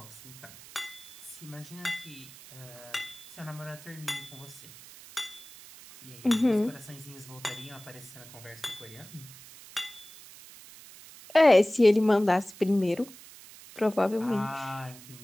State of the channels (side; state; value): right; noise; hiss, 18 dB below the sound